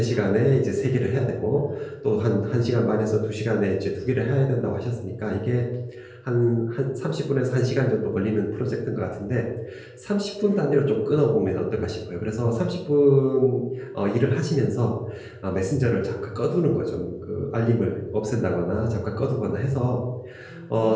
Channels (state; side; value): identical; both; correlation 1.00